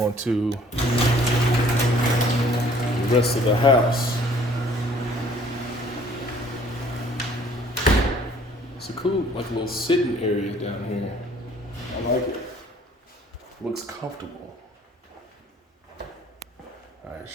to the rest of the house. It's a cool, like, little sitting area down here. I like it. Looks comfortable. All right,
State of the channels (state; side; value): normal; both; correlation 0.57